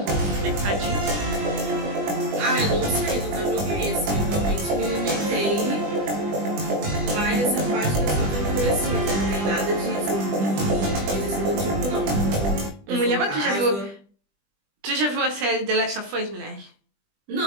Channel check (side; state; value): left; late; 20 ms